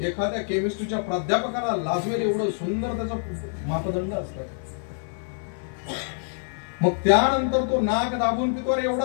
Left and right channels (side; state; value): right; silent; 56 dB below the other